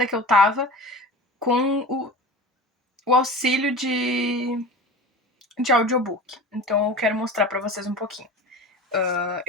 que eu tava com o auxílio de audiobook. Então eu quero mostrar para vocês um pouquinho.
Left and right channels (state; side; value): normal; both; correlation 0.34